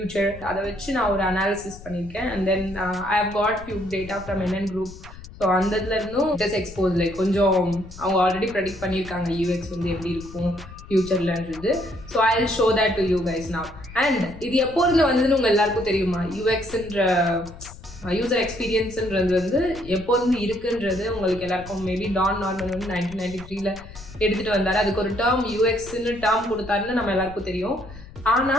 அதை வச்சு நான் ஒரு அனாலிசிஸ் பண்ணியிருக்கேன். And then I have got few data from NN Group. So அந்த இதில் இருந்தும் ஜஸ்ட் எக்ஸ்போஸ் லைக் கொஞ்சம் அவங்க ஆல்ரெடி ப்ரெடிக்ட் பண்ணியிருக்காங்க UX வந்து எப்படி இருக்கும் ஃபியூச்சர்லன்றது. So I will show that to you guys now. And இது எப்போ இருந்து வந்ததுன்னு உங்கள் எல்லாருக்கும் தெரியுமா? UXன்ற யூசர் எக்ஸ்பீரியன்ஸுன்றது வந்து எப்போ இருந்து இருக்குன்றது உங்களுக்கு எல்லாருக்கும் மேபி டான் நார்மன் வந்து 1993 எடுத்துகிட்டு வந்தார். அதுக்கு ஒரு டேர்ம் UXன்னு டேர்ம் கொடுத்தாருன்னு நம்ம எல்லாருக்கும் தெரியும்.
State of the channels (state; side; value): noise; left; rumble, 16 dB below the sound